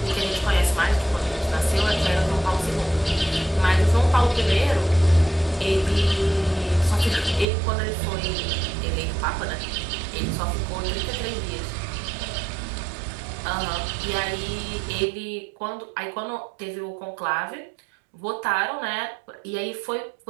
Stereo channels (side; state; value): left; drops out; at 7.5 s